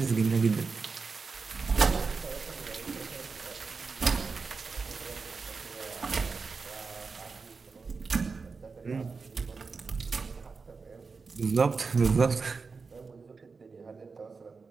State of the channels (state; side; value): quieter; left; 4.7 dB